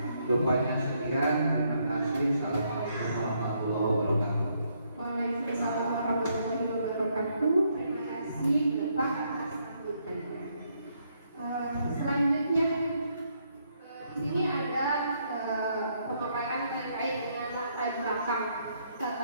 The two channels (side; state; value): both; inverted; correlation -0.74